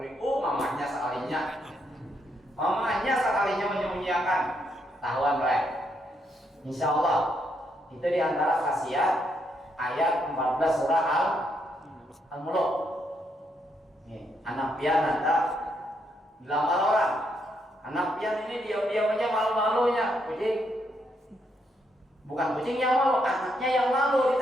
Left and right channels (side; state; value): both; normal; correlation 0.76